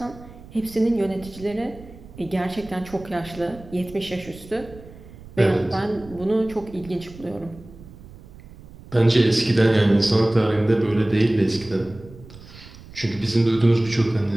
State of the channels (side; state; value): right; noise; rumble, 19 dB below the sound